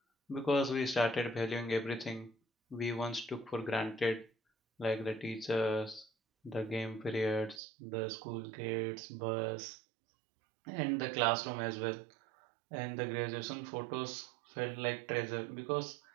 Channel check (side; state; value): left; drops out; at 7.6 s